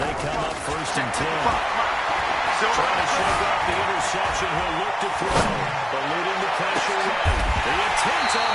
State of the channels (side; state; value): both; identical; correlation 1.00